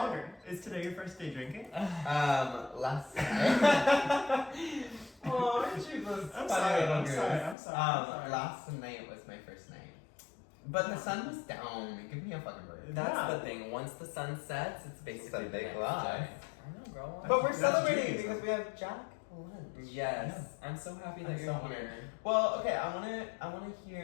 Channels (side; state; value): right; drops out; at 7.6 s